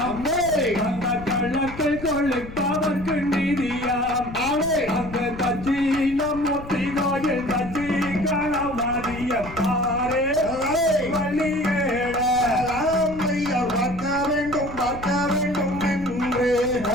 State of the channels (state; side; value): noise; left; rumble, 13 dB below the sound